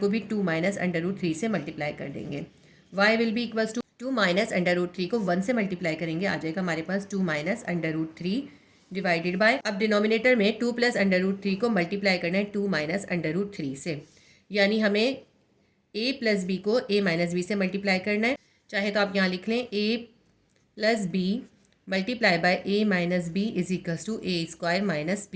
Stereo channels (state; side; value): identical; both; correlation 1.00